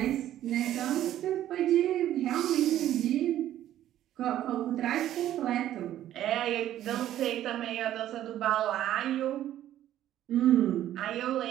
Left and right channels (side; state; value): left; quieter; 12.4 dB